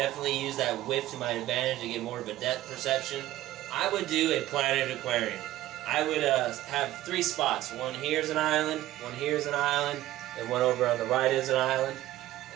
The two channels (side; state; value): left; quieter; 15.0 dB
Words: use that width to my advantage to get more of a depth perception. I would do a planted aquarium. I would have 3 spots. One here is an island, one here is an island, and one over on the right is an island.